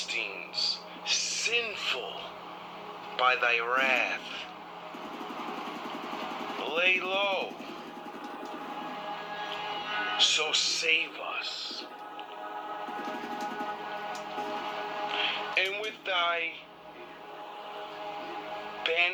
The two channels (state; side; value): identical; both; correlation 1.00